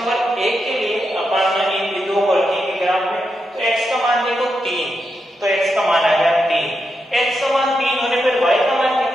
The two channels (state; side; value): normal; both; correlation 0.85